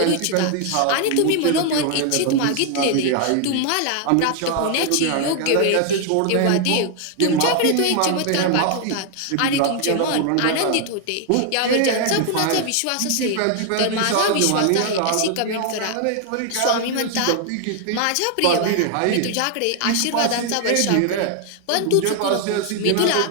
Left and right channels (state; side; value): different; both; correlation 0.00